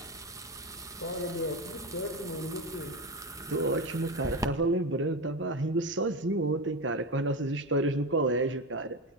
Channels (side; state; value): both; normal; correlation 0.18